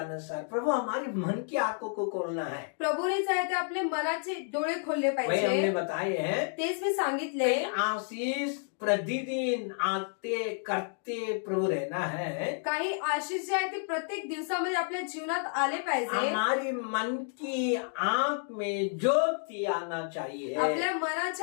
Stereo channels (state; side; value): silent; right; 57 dB below the other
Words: प्रभु हमारे मन की आंखों को खोलना है. प्रभूने आहे ते आपले मनाचे डोळे खोलले वही हमने पाहिजे. बताए हैं. तेच मी सांगितले. आशीष प्रतिदिन आते करते प्रभु रहना है. काही आशीष जे आहे ते प्रत्येक दिवसामध्ये आपल्या जीवनात आले पाहिजे. हमारी मन की आंख में ज्योति आना चाहिए. आपल्या